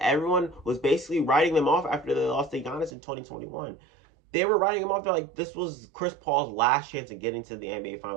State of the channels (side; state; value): left; drops out; at 2.9 s